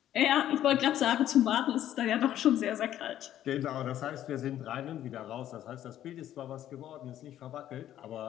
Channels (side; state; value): right; quieter; 11.9 dB